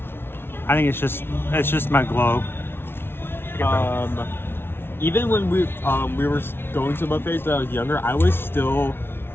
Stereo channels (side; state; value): right; late; 0.11 ms